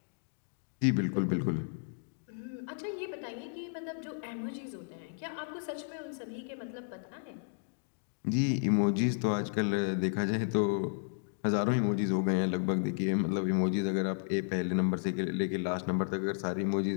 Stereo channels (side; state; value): right; silent; digital silence